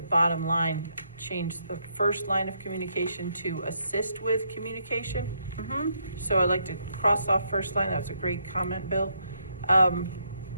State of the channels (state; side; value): inverted; both; correlation -0.75